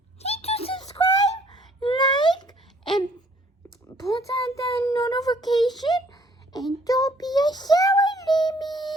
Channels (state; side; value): normal; both; correlation 0.61